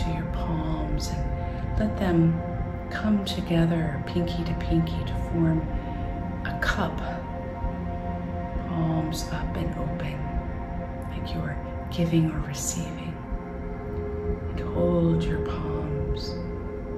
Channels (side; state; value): both; identical; correlation 1.00